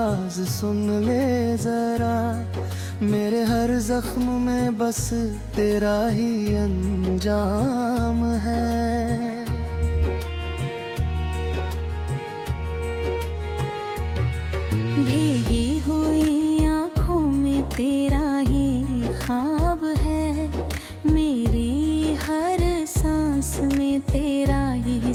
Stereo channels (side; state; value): both; identical; correlation 1.00